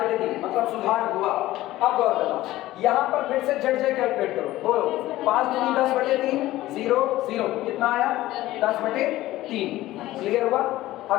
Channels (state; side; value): quieter; right; 16.1 dB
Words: मतलब सुधार हुआ। अब गौर करना, यहाँ पर फिर से जेड जे कैलकुलेट करो, बोलो 5 दूनी 10/3 0 0 कितना आया 10/3। क्लियर हुआ?